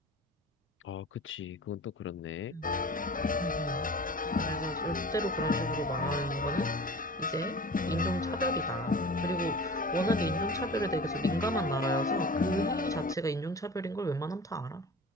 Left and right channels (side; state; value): both; normal; correlation 0.39